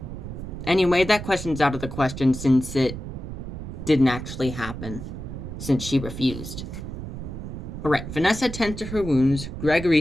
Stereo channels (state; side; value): noise; right; rumble, 8 dB below the sound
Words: Anyway, that question's out of the question since it didn't actually happen, since she refused. Alright, Vanessa tends to her wounds.